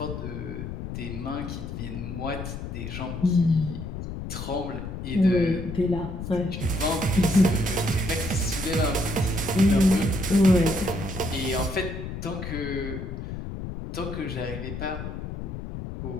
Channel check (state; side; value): noise; left; rumble, 7 dB below the sound